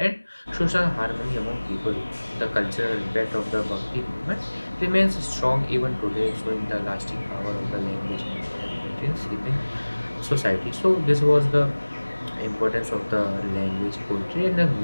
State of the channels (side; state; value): both; inverted; correlation -1.00